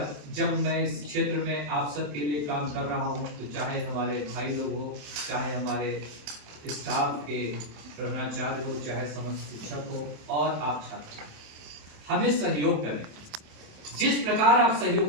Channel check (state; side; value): late; left; 27 ms